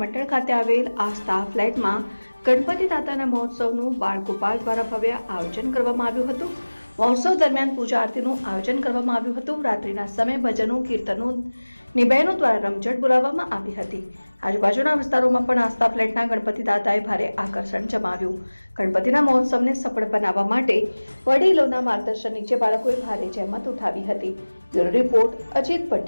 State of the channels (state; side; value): inverted; both; correlation -1.00